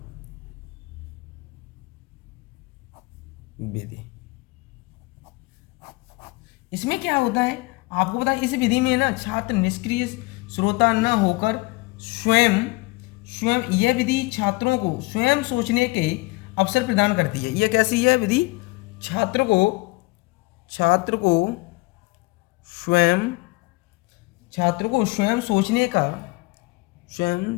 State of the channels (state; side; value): quieter; right; 24.1 dB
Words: विधि। इसमें क्या होता है आपको पता है? इस विधि में ना छात्र निष्क्रिय श्रोता न होकर स्वयं यह विधि छात्रों को स्वयं सोचने के अवसर प्रदान करती है। यह कैसी है विधि? छात्र को स्वयं सोचने